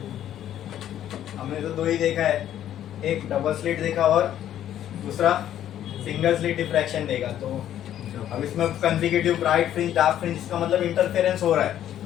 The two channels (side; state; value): right; quieter; 11.3 dB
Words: हमने तो दो ही देखा है, एक डबल स्लिट देखा और दूसरा सिंगल स्लिट डिफ्रैक्शन देखा। तो अब इसमें consecutive bright fringe dark fringe, इसका मतलब इंटरफेरेंस हो रहा है।